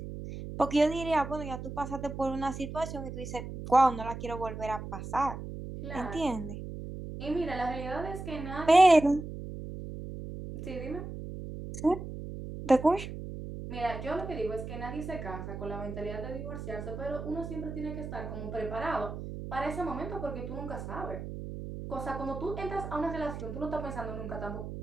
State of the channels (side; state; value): right; noise; hum, 8 dB below the sound